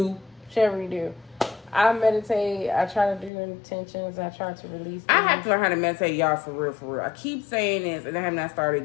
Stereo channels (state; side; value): drops out; right; at 3.3 s